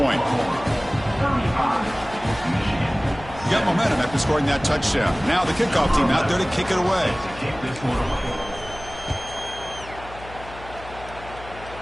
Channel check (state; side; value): noise; left; hum, 16 dB below the sound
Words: You got momentum after scoring that touchdown. Now the kickoff team out there to kick it away.